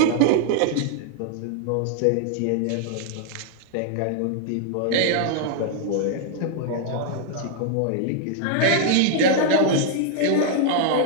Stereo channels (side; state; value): both; different; correlation -0.01